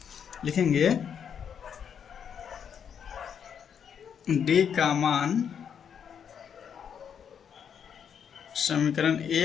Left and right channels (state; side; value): quieter; right; 7.8 dB